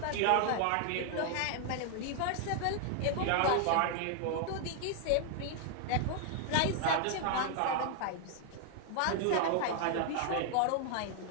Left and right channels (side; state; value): both; different; correlation 0.00